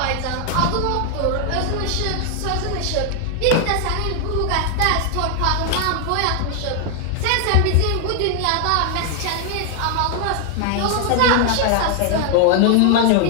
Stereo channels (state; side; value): different; both; correlation 0.00